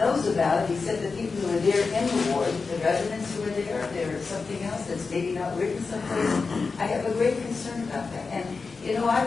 about it except the people who are there in the ward, the residents who are there. There's something else that's maybe not written someplace. I have a great concern about that. And, you know,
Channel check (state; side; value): quieter; right; 4.5 dB